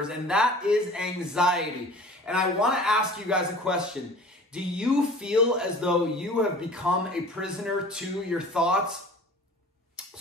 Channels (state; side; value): normal; both; correlation 0.44